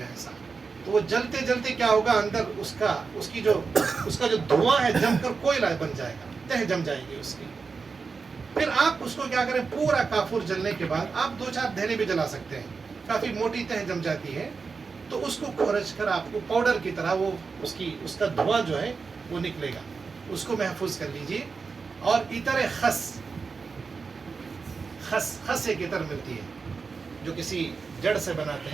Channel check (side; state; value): left; quieter; 4.9 dB